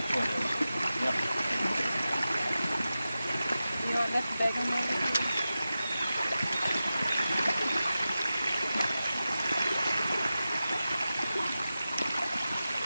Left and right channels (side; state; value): both; inverted; correlation -0.93